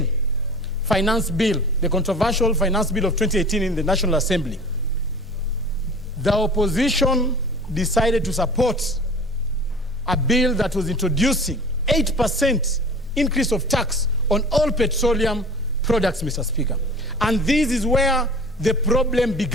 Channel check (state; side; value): normal; both; correlation 0.41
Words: finance bill, the controversial finance bill of 2018 in the National Assembly, the opposition decided to support a bill that was introducing 8% increase of tax on all petroleum products, Mr. Speaker. And this is where the problem